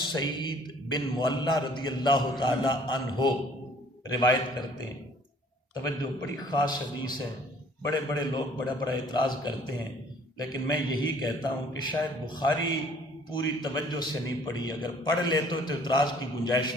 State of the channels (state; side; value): normal; both; correlation 0.56